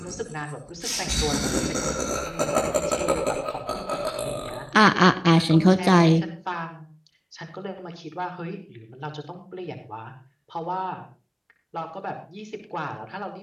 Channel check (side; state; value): both; identical; correlation 1.00